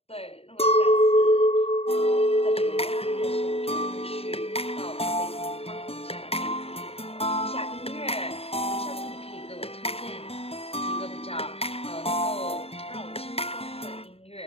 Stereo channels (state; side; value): late; right; 0.29 ms